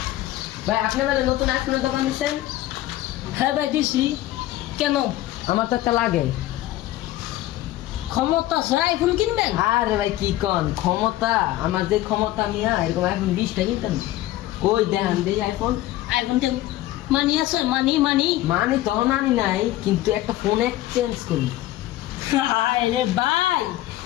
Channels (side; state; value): right; quieter; 15.4 dB